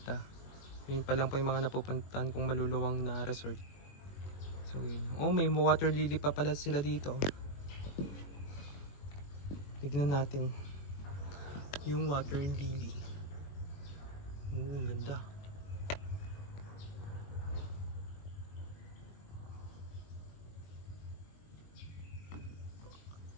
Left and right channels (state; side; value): late; right; 21 ms